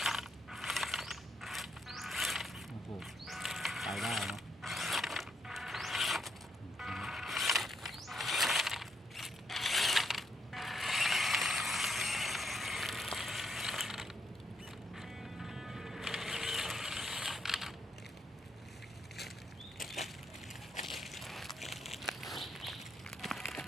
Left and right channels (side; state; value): both; normal; correlation 0.77